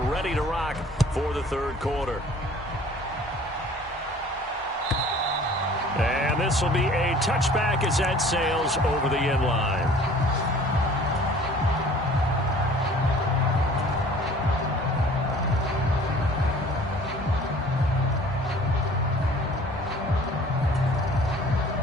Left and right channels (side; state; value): both; normal; correlation 0.50